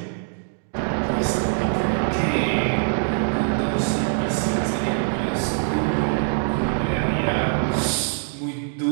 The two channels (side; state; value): left; silent; digital silence